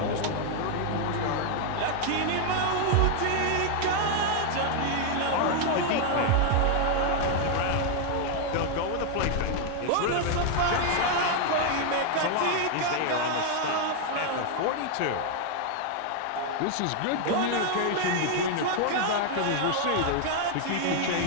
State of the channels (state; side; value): different; both; correlation 0.00